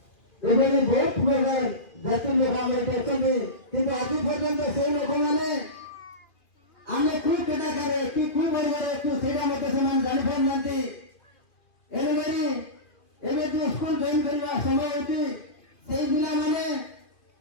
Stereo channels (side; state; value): right; late; 2.4 ms